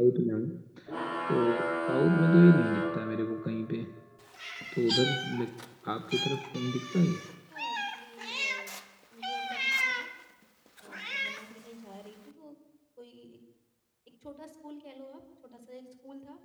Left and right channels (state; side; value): identical; both; correlation 1.00